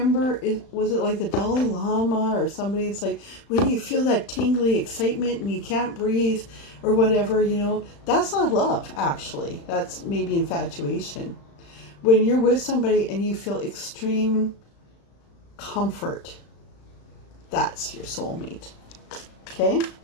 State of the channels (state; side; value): late; right; 35 ms